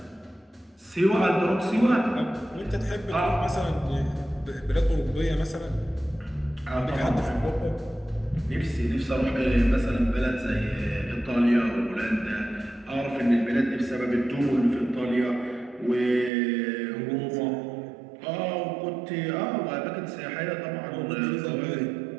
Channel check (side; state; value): left; drops out; at 16.3 s